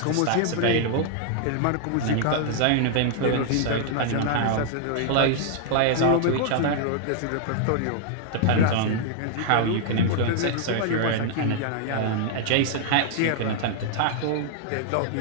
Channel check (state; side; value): different; both; correlation -0.01